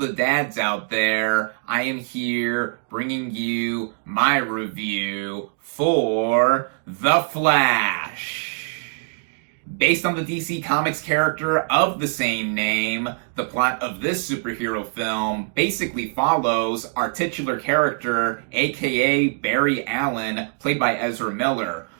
dads out there. I am here bringing you my review for The Flash. Based on the DC Comics character of the same name, the plot of this superhero film basically follows our titular character, aka Barry Allen, played by Ezra Miller,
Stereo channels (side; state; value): left; silent; digital silence